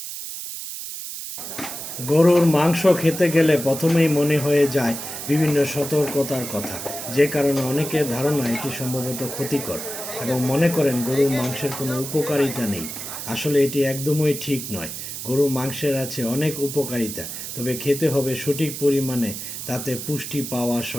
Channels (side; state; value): right; noise; hiss, 8 dB below the sound